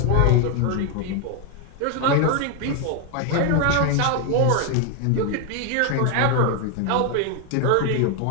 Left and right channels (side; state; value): both; different; correlation 0.01